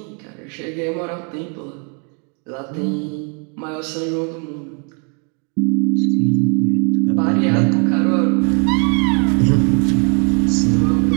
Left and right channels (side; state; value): left; quieter; 37.4 dB